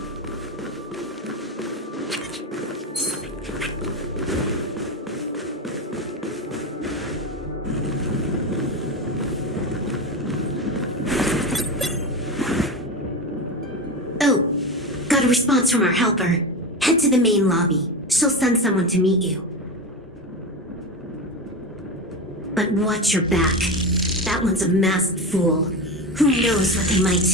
Oh, got a response from our helper. Head to the main lobby. She'll send someone to meet you. But watch your back. That one's a masked fool. Who knows what they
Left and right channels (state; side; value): normal; both; correlation 0.21